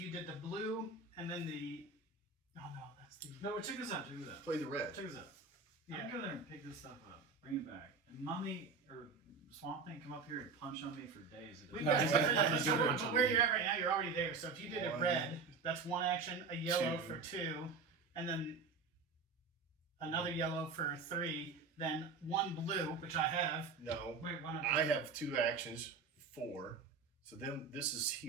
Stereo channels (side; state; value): left; quieter; 4.7 dB